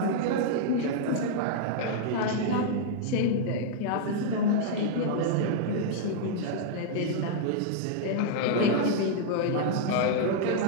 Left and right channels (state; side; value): different; both; correlation -0.01